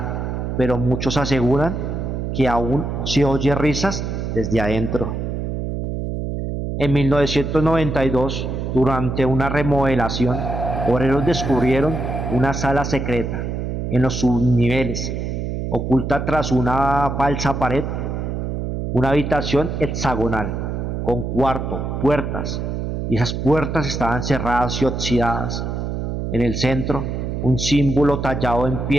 pero muchos aseguran que aún se oye risas desde adentro. En 1992, durante una remodelación, obreros descubrieron una sala secreta en los subniveles, oculta tras una falsa pared, una habitación hexagonal, con cuarto, puertas, y esas puertas estaban cerradas y oxidadas. En el centro, un símbolo tallado en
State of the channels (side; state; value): right; noise; hum, 3 dB below the sound